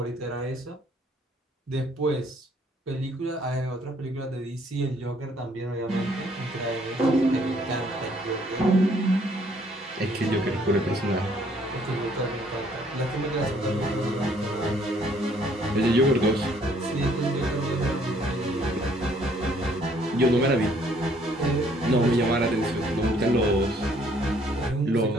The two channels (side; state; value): both; normal; correlation 0.64